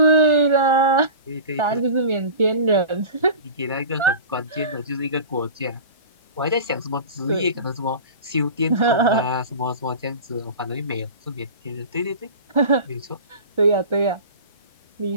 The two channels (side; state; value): both; inverted; correlation -0.35